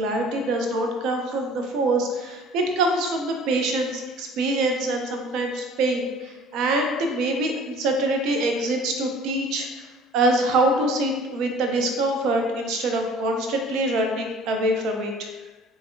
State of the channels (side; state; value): both; normal; correlation 0.48